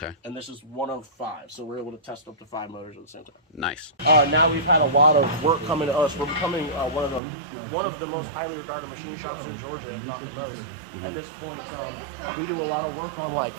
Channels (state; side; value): drops out; left; at 7.2 s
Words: And this is one of 5, so we're able to test up to 5 motors at the same time. Nice. Now we've had a lot of work coming to us. We're becoming one of the most highly regarded machine shops in Georgia, if not the most. At this point, we do a lot of work on like